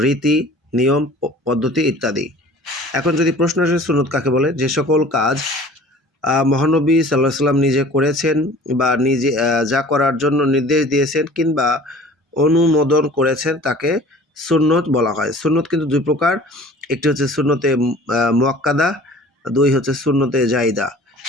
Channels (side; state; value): both; normal; correlation 0.46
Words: নিয়ম, পদ্ধতি ইত্যাদি। এখন যদি প্রশ্ন আসে সুন্নত কাকে বলে, যে সকল কাজ মহানবী সাল্লাল্লাহু আলাইহি সাল্লাম নিজে করেছেন বা নিজে যা করার জন্য নির্দেশ দিয়েছেন কিংবা অনুমোদন করেছেন তাকে সুন্নত বলা হয়। সুন্নত কিন্তু দুই প্রকার, একটি হচ্ছে সুন্নতে মুআক্কাদা, দুই হচ্ছে সুন্নতে জাইদা।